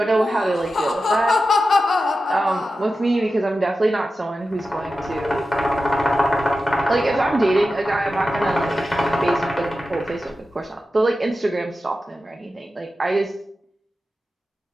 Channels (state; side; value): normal; both; correlation 0.92